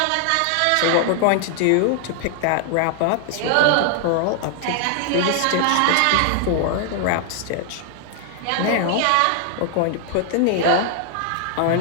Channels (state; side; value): different; both; correlation 0.00